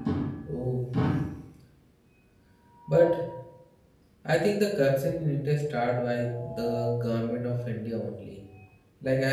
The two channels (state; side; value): identical; both; correlation 1.00